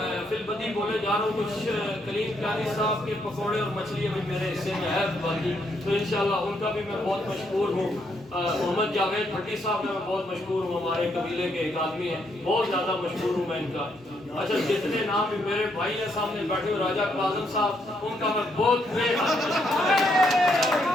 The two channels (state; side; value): normal; both; correlation 0.75